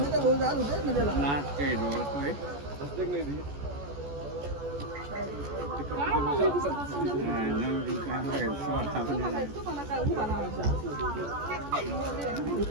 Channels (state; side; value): late; left; 14 ms